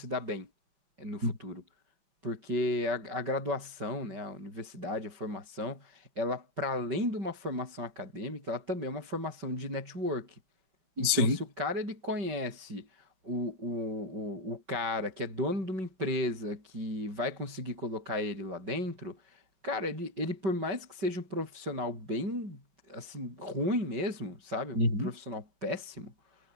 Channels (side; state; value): left; late; 5.1 ms